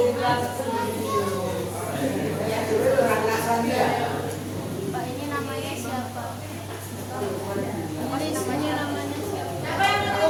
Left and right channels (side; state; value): both; identical; correlation 1.00